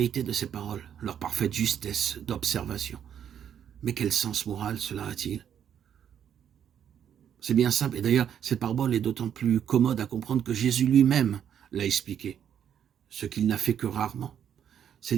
de ces paroles, leur parfaite justesse d'observation. Mais quel sens moral cela a-t-il? C'est bien simple, et d'ailleurs, cette parabole est d'autant plus commode à comprendre que Jésus lui-même l'a expliqué, ce qu'il n'a fait que rarement. Ses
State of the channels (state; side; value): quieter; left; 9.1 dB